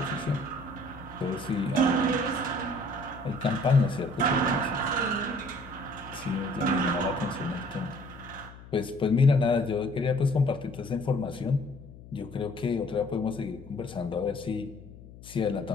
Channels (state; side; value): noise; left; hum, 18 dB below the sound